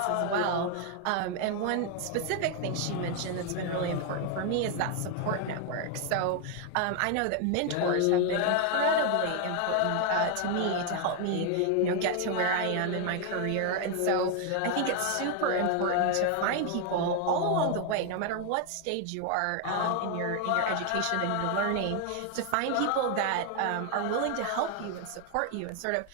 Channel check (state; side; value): different; both; correlation 0.00